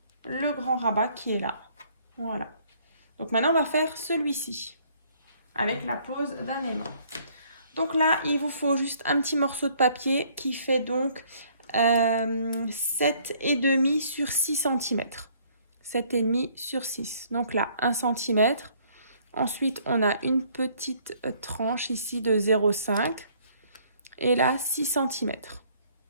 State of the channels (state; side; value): inverted; both; correlation -0.62